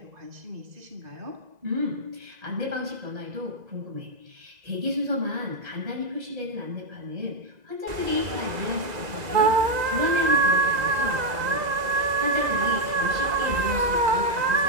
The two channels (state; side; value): late; left; 2.0 ms